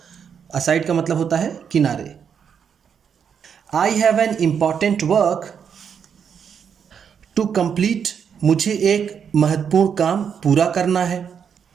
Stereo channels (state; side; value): quieter; left; 7.4 dB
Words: असाइड का मतलब होता है किनारे। I have an important work to complete, मुझे एक महत्वपूर्ण काम पूरा करना है।